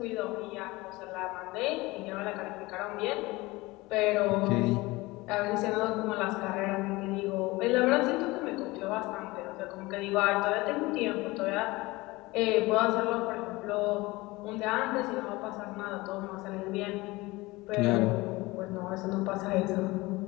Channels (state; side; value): quieter; right; 21.5 dB